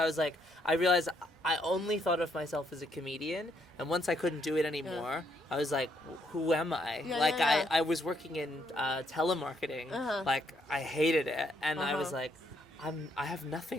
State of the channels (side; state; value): both; normal; correlation 0.73